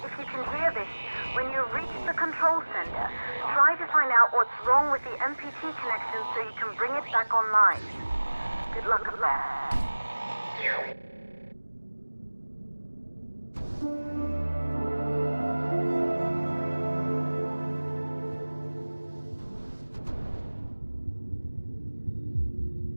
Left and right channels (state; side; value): inverted; both; correlation -1.00